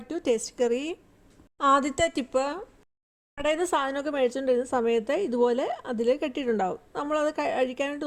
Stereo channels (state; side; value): identical; both; correlation 1.00